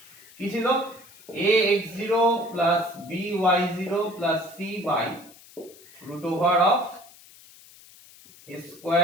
কি ছিল ax0 plus by0 plus c by root over of a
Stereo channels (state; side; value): noise; left; hiss, 23 dB below the sound